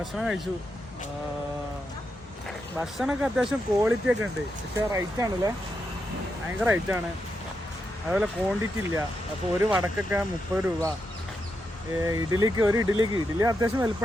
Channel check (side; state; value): both; normal; correlation 0.84